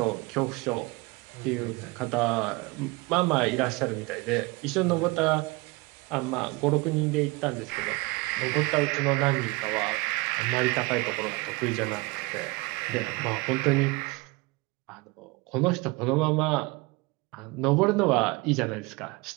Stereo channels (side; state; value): left; quieter; 24.3 dB